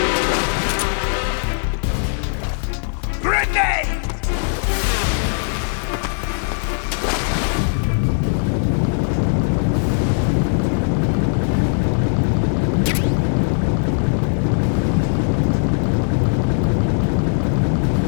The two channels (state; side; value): silent; right; digital silence